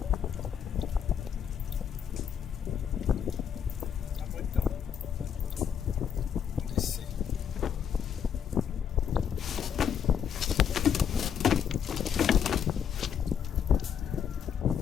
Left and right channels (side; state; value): right; quieter; 8.1 dB